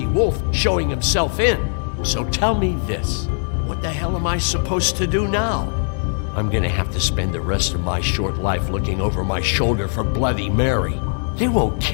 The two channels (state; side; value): silent; right; digital silence